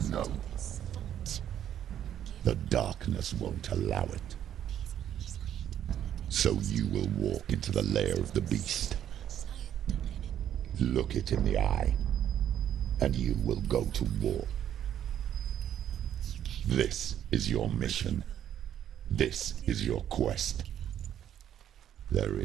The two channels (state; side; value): quieter; left; 10.4 dB